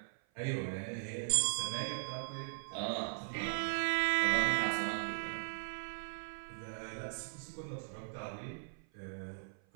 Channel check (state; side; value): silent; left; 52 dB below the other